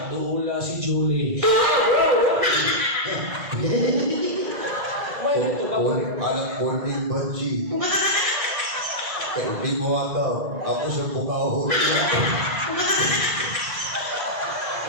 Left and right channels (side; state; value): left; late; 2.0 ms